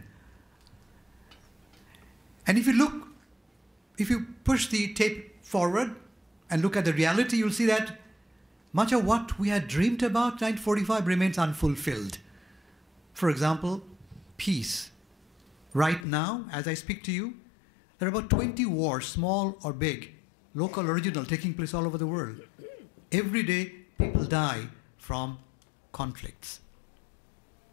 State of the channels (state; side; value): drops out; right; at 16.1 s